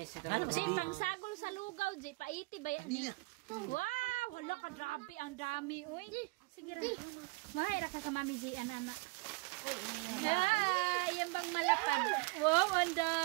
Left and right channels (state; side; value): quieter; left; 27.1 dB